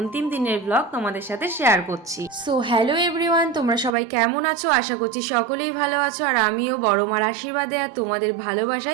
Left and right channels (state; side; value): drops out; left; at 4.0 s